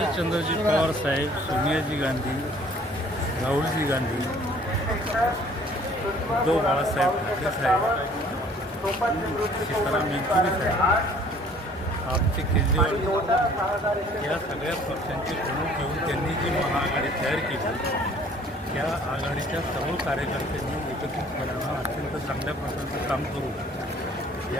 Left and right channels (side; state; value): both; normal; correlation 0.55